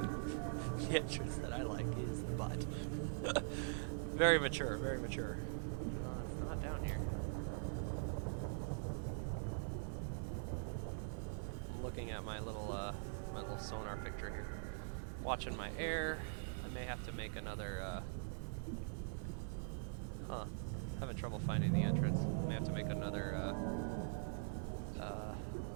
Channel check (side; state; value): left; silent; digital silence